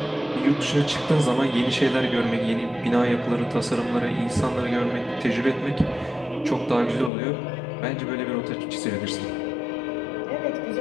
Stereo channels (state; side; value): drops out; right; at 7.1 s